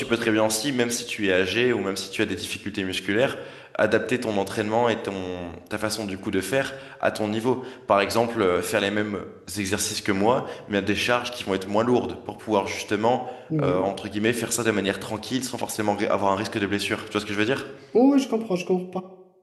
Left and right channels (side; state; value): both; identical; correlation 1.00